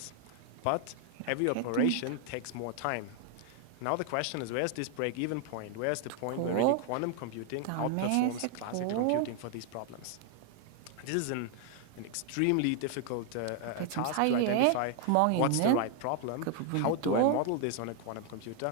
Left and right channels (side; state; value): both; different; correlation 0.00